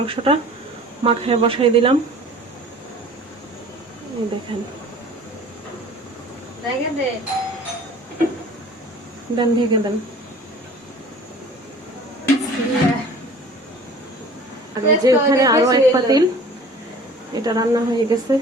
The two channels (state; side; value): normal; both; correlation 0.46